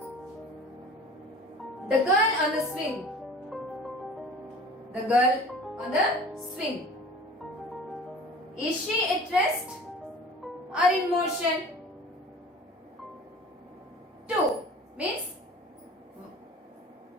The girl on the swing. The girl on the swing. Is she at rest or in motion? 2 means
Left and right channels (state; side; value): normal; both; correlation 0.43